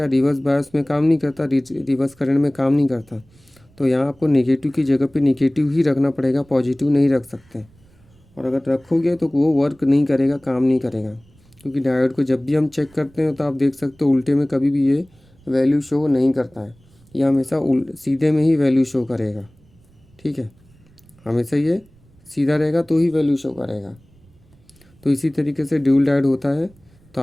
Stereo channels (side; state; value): right; noise; rumble, 29 dB below the sound